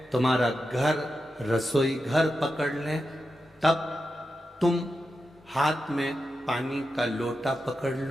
तुम्हारा घर रसोई घर पकड़ लें, तब तुम हाथ में पानी का लोटा पकड़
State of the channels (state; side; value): normal; both; correlation 0.89